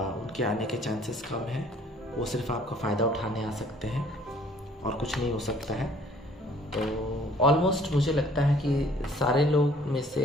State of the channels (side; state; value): both; normal; correlation 0.57